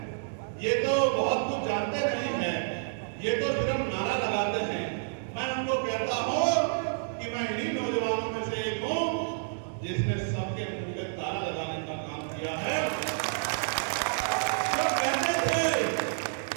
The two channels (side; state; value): left; silent; digital silence